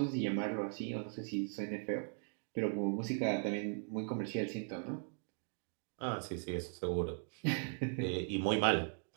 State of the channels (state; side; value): silent; left; 52 dB below the other